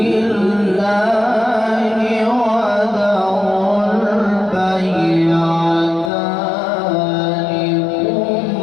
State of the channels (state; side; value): drops out; right; at 6.1 s